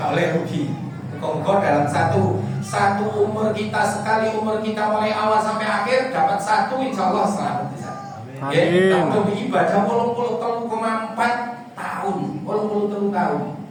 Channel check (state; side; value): identical; both; correlation 1.00